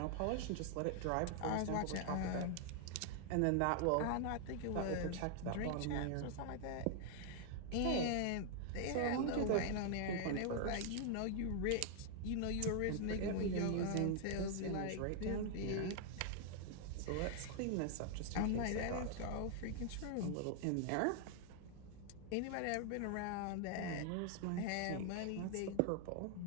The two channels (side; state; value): both; different; correlation 0.00